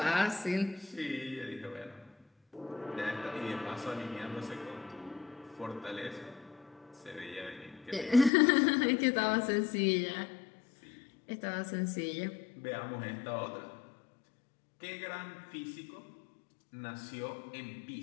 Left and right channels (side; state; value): right; drops out; at 8.3 s